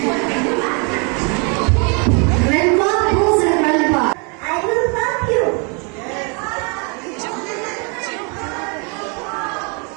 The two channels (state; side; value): quieter; left; 34.6 dB